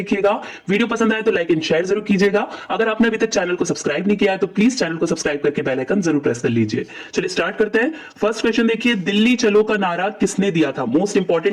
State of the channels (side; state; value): both; identical; correlation 1.00